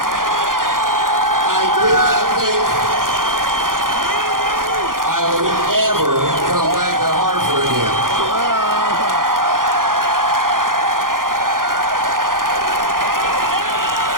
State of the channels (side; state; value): left; late; 0.90 ms